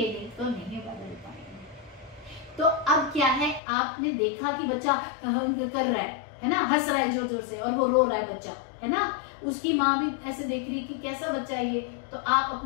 नहीं तो नहीं बदल पाएंगे। तो अब क्या है, आपने देखा कि बच्चा कर रहा है ना, हंस रहा है जोर जोर से और वो रो रहा है बच्चा, है ना। उसकी माँ भी ऐसे देख रही कि कैसा बच्चा है ये। तो आप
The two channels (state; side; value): drops out; right; at 3.6 s